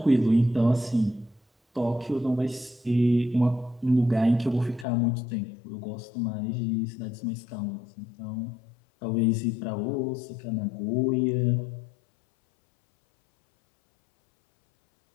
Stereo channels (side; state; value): right; drops out; at 4.9 s